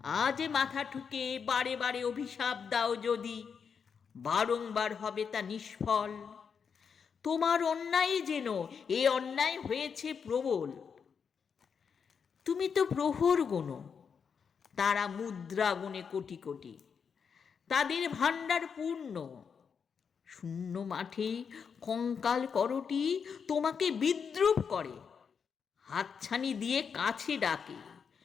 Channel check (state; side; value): quieter; right; 6.4 dB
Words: আজ মাথা ঠুকে বারে বারে অভিশাপ দাও যদি, বারংবার হবে তা নিষ্ফল। তোমার অন্যায় যেন এ অন্যায় হয়েছে প্রবল। তুমি তো প্রহর গোনো, তারা মুদ্রা গুণে কোটি কোটি, তাদের ভাণ্ডার পূর্ণ। শূন্য মাঠে কঙ্কাল করটি তোমাকে বিদ্রুপ করে, হাতছানি দিয়ে কাছে ডাকে